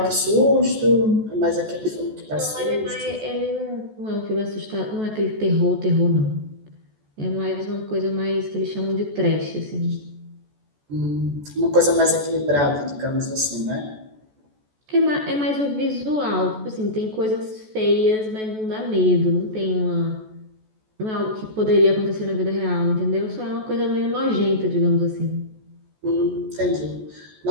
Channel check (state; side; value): late; left; 14 ms